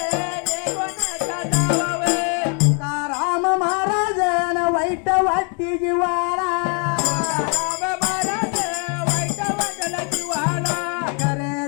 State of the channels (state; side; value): quieter; right; 39.7 dB